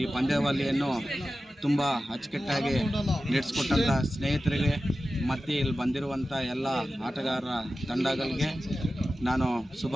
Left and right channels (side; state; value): both; normal; correlation 0.94